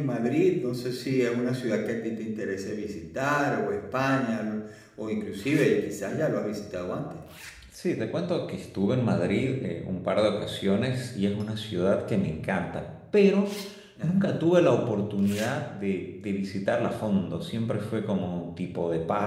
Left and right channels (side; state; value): both; identical; correlation 1.00